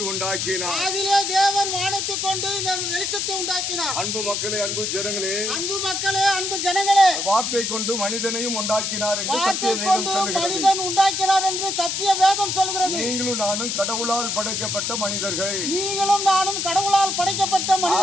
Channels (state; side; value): noise; left; hiss, 1 dB below the sound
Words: உண்டாக்கினார். ஆதியிலே தேவன் வானத்தை கொண்டு வெளிச்சத்தை உண்டாக்கினார். அன்பு மக்களே, அன்பு ஜனங்களே, அன்பு ஜனங்களே, வார்த்தை கொண்டு மனிதனையும் உண்டாக்கினார் என்று சத்திய வேதம் சொல்கிறது. மனிதன் உண்டாக்கினார் என்று சத்திய வேதம் சொல்கிறது. நீங்களும் நானும் கடவுளால் படைக்கப்பட்ட மனிதர்கள். நீங்களும் நானும் கடவுளால் படைக்கப்பட்ட